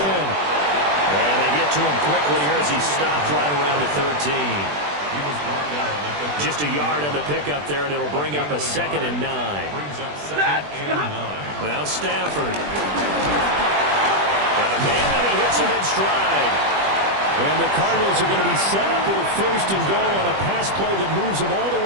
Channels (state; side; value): late; left; 20 ms